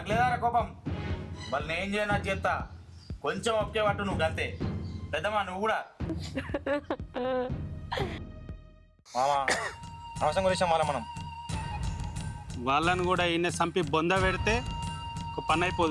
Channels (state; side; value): identical; both; correlation 1.00